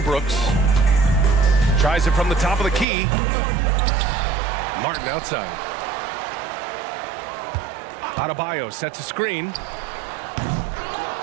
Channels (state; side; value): drops out; left; at 2.9 s